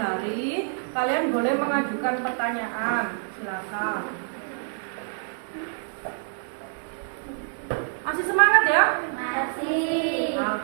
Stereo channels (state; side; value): silent; left; digital silence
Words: kalian boleh mengajukan pertanyaan. Silakan. Masih semangat ya? Masih.